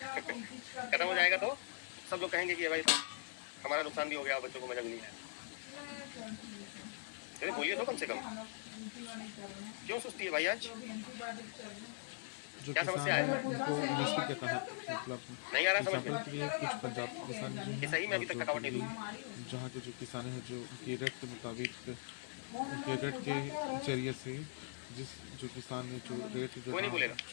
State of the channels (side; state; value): right; silent; 51 dB below the other